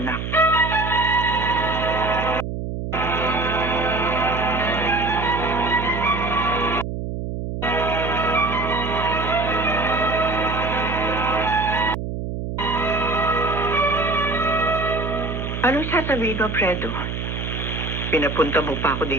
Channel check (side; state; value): right; noise; hum, 5 dB below the sound